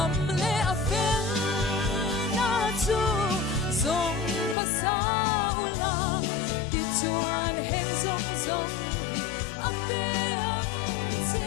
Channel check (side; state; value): right; drops out; at 4.5 s